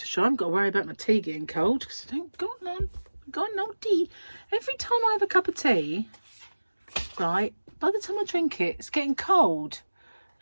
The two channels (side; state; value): both; inverted; correlation -1.00